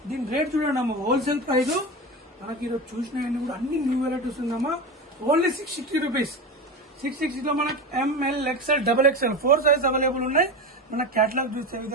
దీని రేట్ చూడండి అమ్మా, హోల్సేల్ ప్రైస్. మనకి ఈరోజు చూసినవన్నీ కూడా అన్ని న్యూ వెరైటీస్ ఉందమ్మా. Only 660 rupees. 660 లో మనకి ML XL XXL 4 size available ఉన్నాయి. మన క్యాటలాగ్ చూసే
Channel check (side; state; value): both; normal; correlation 0.22